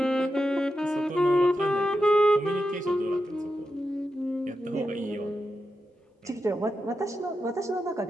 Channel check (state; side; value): normal; both; correlation 0.88